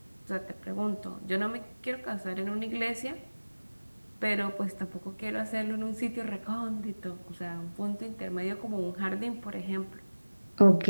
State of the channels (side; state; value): both; inverted; correlation -1.00